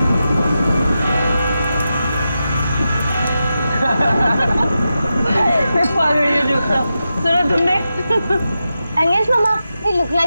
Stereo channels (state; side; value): inverted; both; correlation -0.90